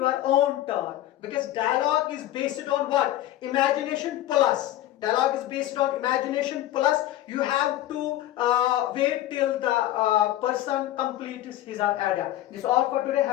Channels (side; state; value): right; quieter; 14.1 dB